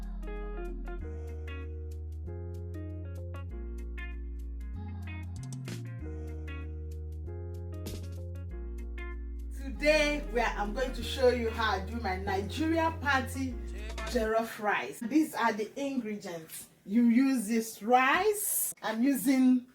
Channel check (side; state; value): both; identical; correlation 1.00